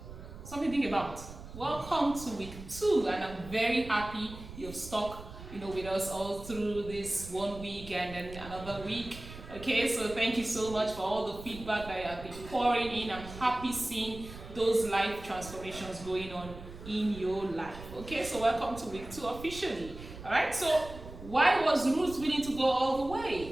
Something to think about. Welcome to week 2, and I'm very happy you've stuck with us all through this 1 week and then another week. Okay, so thank you so much for all the feedback that you have been pouring in. I'm happy seeing those life transformations going on in your life. Okay, so welcome to week 2 officially. All right, so why was Ruth willing to go all the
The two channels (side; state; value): right; noise; rumble, 14 dB below the sound